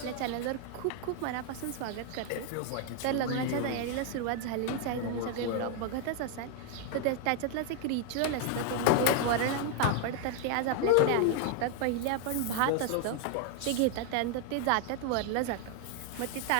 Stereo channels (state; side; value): different; both; correlation 0.00